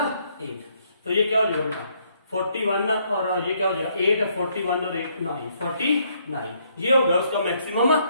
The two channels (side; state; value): both; inverted; correlation -0.70